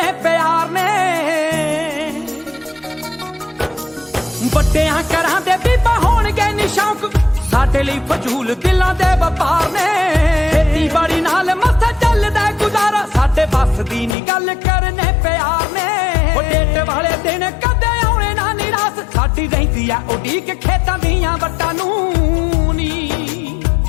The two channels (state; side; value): drops out; right; at 14.2 s